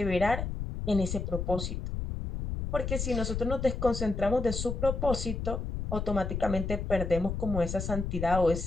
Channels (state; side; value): noise; left; rumble, 4 dB below the sound